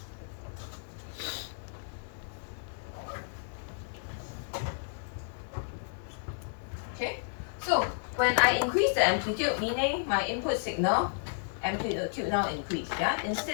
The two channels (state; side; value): silent; right; digital silence